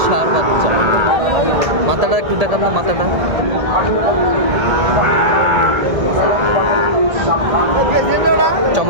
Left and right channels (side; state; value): left; late; 1.8 ms